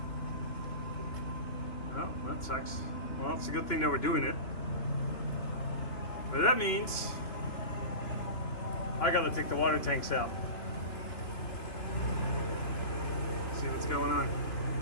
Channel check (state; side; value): late; right; 2.9 ms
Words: Oh, that sucks. Well, it's a good thing that we're doing it. But that means I gotta take the water tanks out. See what's going on.